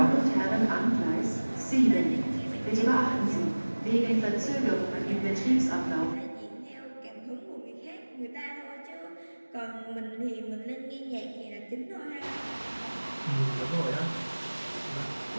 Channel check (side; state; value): both; inverted; correlation -1.00